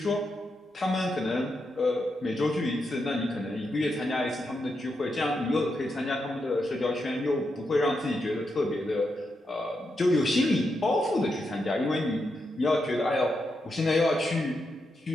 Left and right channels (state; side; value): normal; both; correlation 0.84